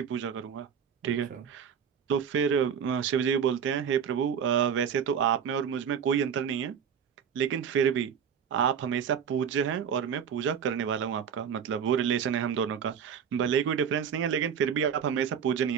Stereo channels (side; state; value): left; quieter; 7.6 dB